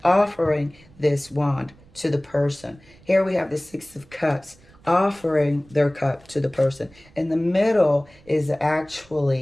offering this wand to the person. Here we have the Six of Cups, offering their cup to the person. In the middle is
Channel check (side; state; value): right; noise; rumble, 27 dB below the sound